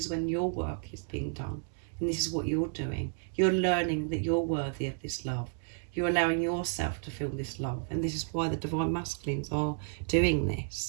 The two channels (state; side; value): silent; left; digital silence